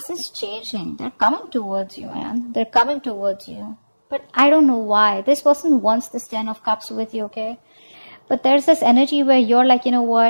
changing. They're coming towards you, man. They're coming towards you. But I don't know why. This person wants this 10 of Cups with you, okay? But there's this energy where you're like, you know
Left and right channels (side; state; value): both; inverted; correlation -1.00